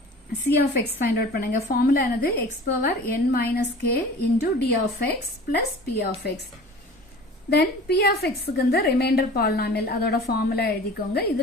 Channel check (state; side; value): normal; both; correlation 0.42